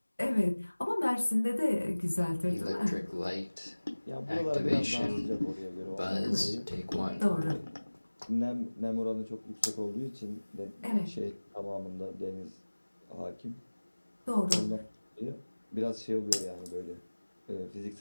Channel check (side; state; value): both; inverted; correlation -1.00